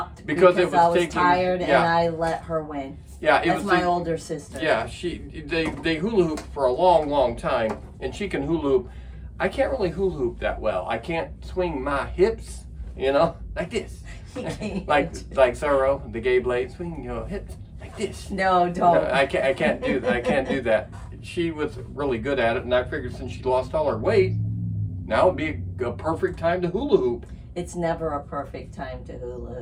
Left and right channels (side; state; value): both; identical; correlation 1.00